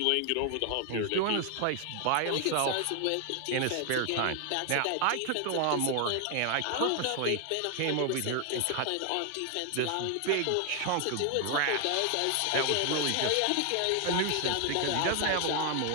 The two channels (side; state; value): both; different; correlation 0.00